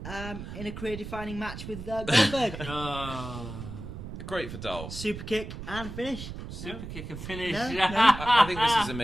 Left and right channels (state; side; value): noise; right; rumble, 9 dB below the sound